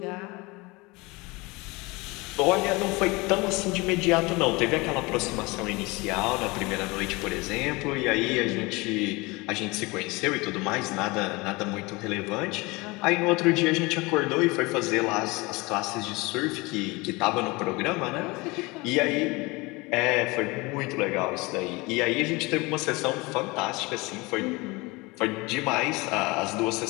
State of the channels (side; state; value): right; quieter; 24.4 dB